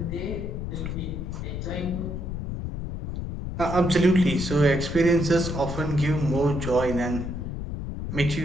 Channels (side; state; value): left; noise; rumble, 5 dB below the sound